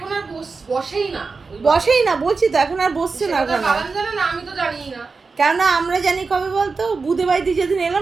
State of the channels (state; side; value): quieter; left; 4.5 dB